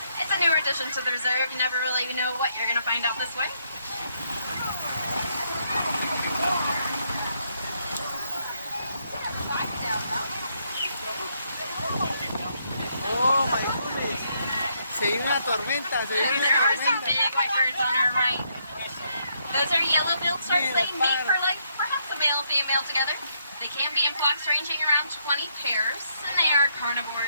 it's a newer addition to the reserve. You never really know what you're going to find out this way. Oh my goodness. Se viene una tormenta, se viene There una are some tormenta. big white birds on our right. Those are yellow-billed storks. They mate for like perhaps a male and female together. They can be in flocks ranging around 20 pairs, and they are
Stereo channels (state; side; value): inverted; both; correlation -0.75